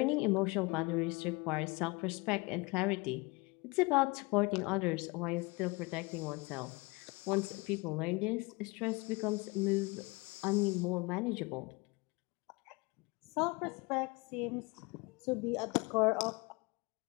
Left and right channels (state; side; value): quieter; right; 25.8 dB